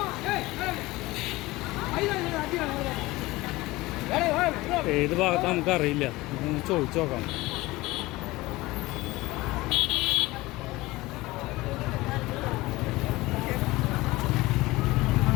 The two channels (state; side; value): quieter; right; 20.0 dB